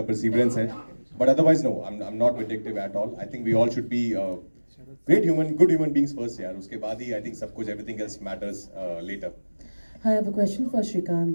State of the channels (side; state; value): both; inverted; correlation -1.00